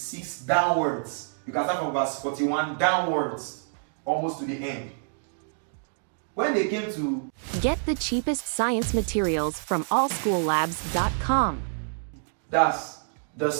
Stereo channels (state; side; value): silent; left; digital silence